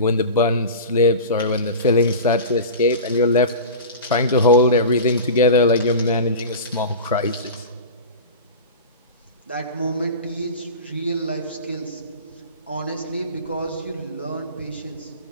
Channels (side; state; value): both; inverted; correlation -0.31